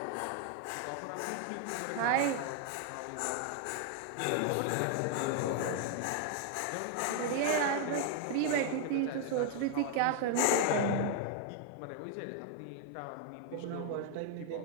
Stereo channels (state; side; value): different; both; correlation 0.00